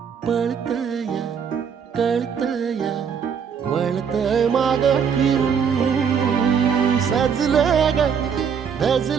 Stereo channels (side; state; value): left; quieter; 7.0 dB